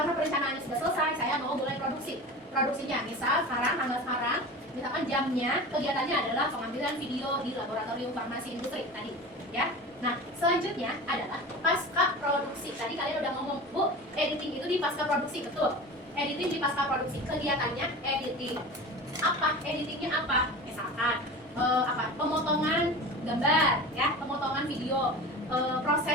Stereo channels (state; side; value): normal; both; correlation 0.33